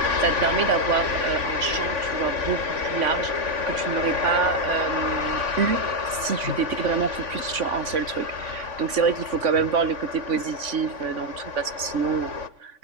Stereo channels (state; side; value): late; left; 3.5 ms